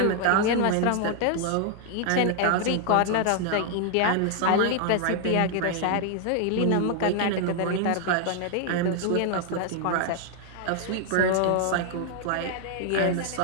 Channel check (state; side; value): different; both; correlation 0.00